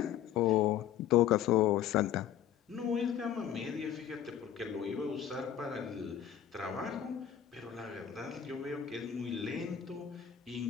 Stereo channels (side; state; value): right; quieter; 10.0 dB